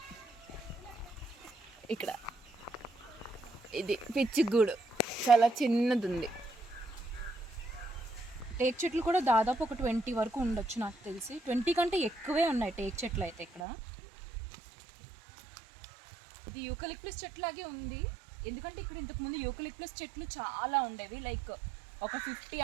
ఇక్కడ. ఇది పిచ్చుగూడు చాలా చిన్నది ఉంది. టేక్ చెట్లు కూడా దాదాపు ఒక 20 వరకు ఉండొచ్చు నాకు తెలిసి. 20 కంటే ఎక్కువే ఉన్నాయి టేక్ చెట్లు అయితే ఇక్కడ. ఇది యూకలిప్టస్ చెట్లాగే ఉంది. ఎందుకంటే ఇక్కడ ఇంతకుముందు యూకలిప్టస్ చెట్లు చాలా ఉండేవి. లైక్ ఒక 50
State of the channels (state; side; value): drops out; left; at 13.6 s